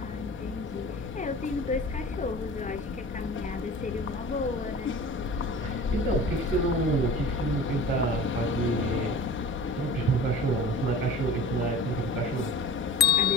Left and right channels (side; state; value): both; normal; correlation 0.38